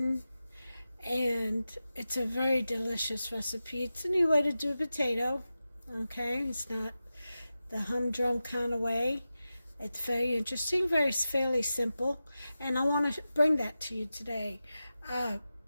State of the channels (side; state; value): both; inverted; correlation -0.93